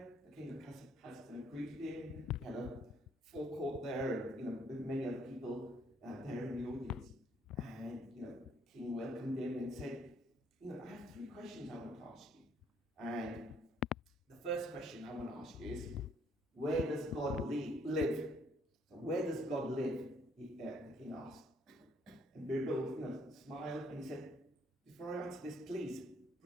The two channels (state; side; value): normal; both; correlation 0.66